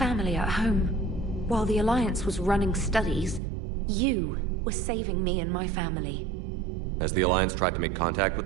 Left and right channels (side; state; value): left; drops out; at 3.4 s